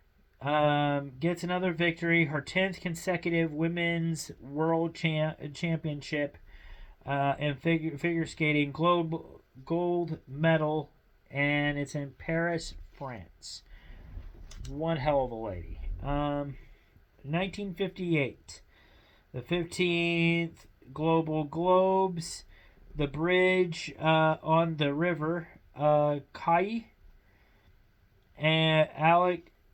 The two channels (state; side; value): identical; both; correlation 1.00